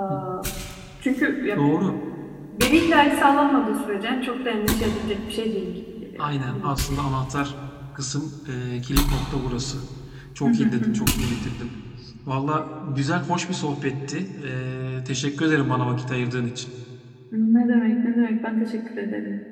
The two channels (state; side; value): identical; both; correlation 1.00